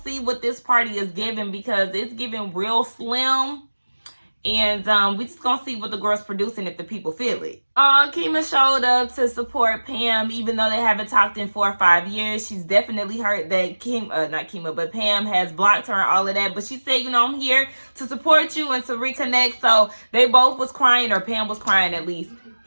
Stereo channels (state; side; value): inverted; both; correlation -1.00